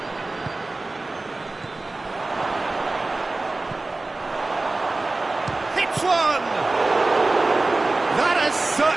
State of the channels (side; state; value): left; quieter; 3.2 dB